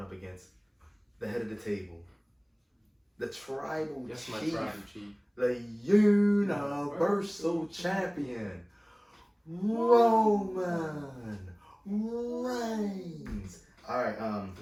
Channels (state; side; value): identical; both; correlation 1.00